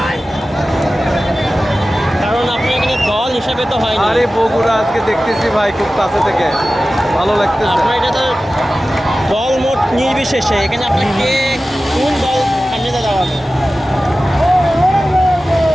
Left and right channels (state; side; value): normal; both; correlation 0.95